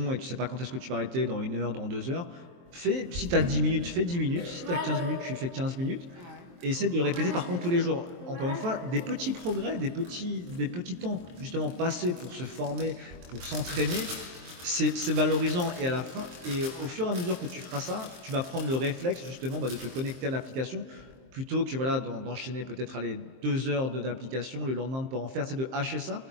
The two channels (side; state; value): left; late; 23 ms